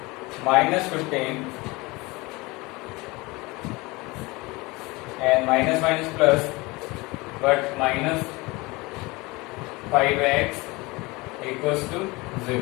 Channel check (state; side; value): quieter; right; 23.6 dB